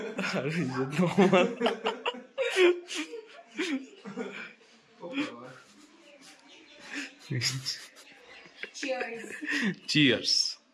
আর এই যে তোমার চিয়ার্স।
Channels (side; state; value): both; identical; correlation 1.00